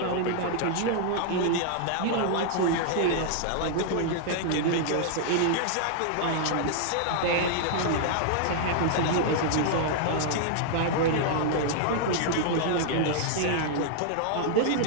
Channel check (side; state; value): both; different; correlation -0.01